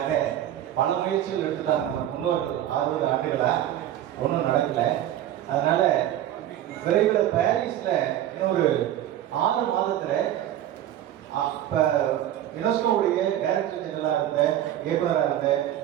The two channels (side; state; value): left; quieter; 12.1 dB